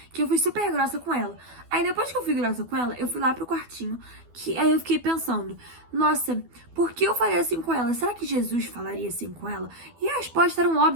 que eu fui super grossa com ela. Aí depois que eu fui grossa com ela, eu fui lá pro quartinho, que aí eu fiquei pensando, nossa, por que eu falei assim com ela? Será que Jesus falaria assim com ela? E a resposta era um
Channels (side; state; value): left; late; 12 ms